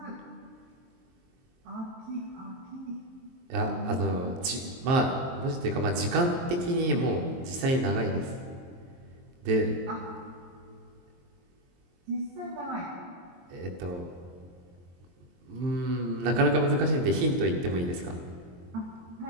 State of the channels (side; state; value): left; late; 23 ms